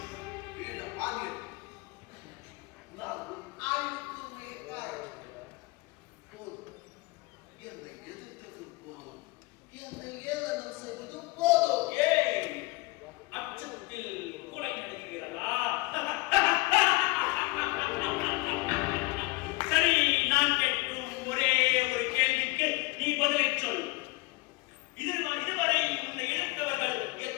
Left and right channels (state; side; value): quieter; right; 24.2 dB